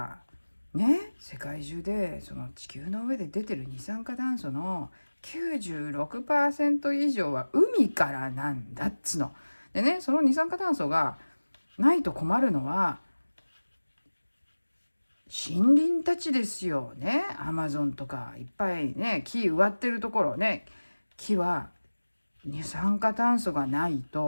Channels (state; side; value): inverted; both; correlation -1.00